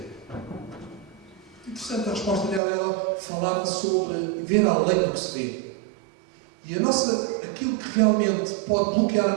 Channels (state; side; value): drops out; left; at 2.6 s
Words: Interessante a resposta dela. Ela falava sobre ver além do que se vê. E aquilo que realmente pode bloquear